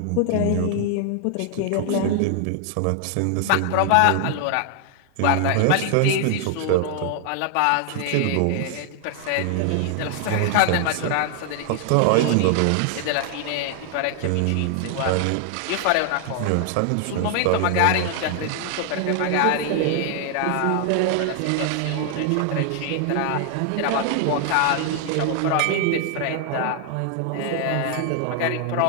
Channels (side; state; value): both; different; correlation 0.00